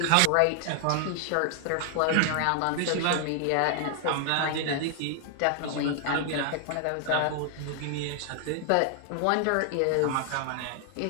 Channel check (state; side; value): different; both; correlation 0.00